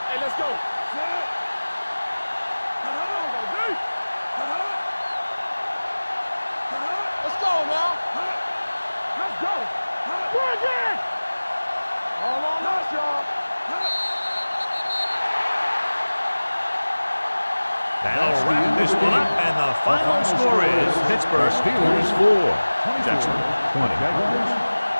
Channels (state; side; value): inverted; both; correlation -1.00